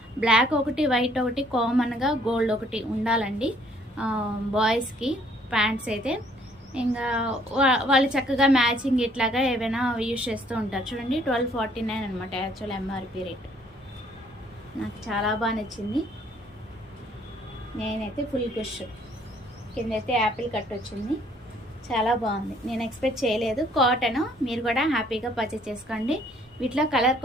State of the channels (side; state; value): both; normal; correlation 0.62